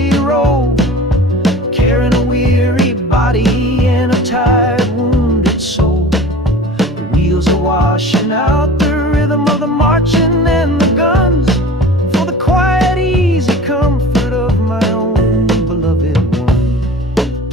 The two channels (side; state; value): both; normal; correlation 0.40